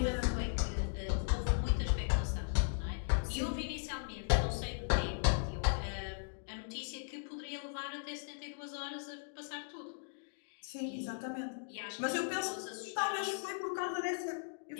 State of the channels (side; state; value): right; silent; digital silence